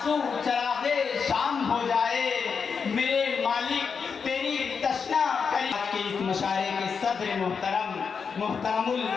چراغے شام ہو جائے، میرے مالک تیری تشنا کری۔ آج کے اس مشاعرے کے صدر محترم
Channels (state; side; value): quieter; right; 5.9 dB